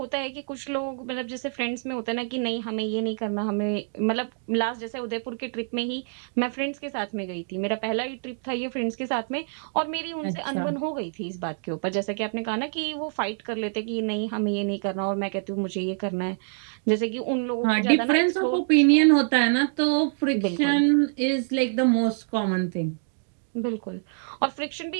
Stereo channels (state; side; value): silent; left; digital silence